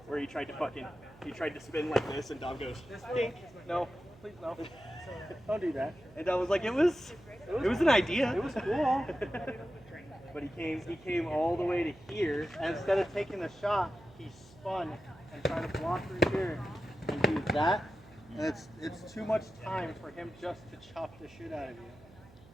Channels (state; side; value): noise; right; hum, 23 dB below the sound